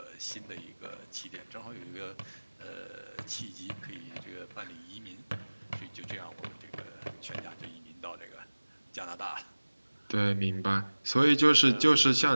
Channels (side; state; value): both; inverted; correlation -1.00